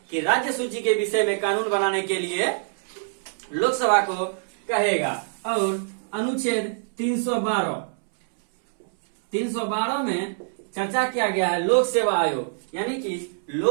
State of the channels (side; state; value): left; silent; 62 dB below the other